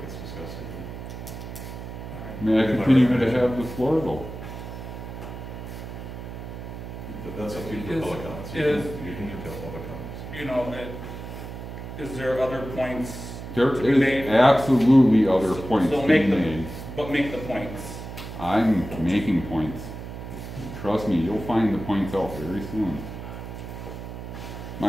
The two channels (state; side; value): noise; right; hum, 10 dB below the sound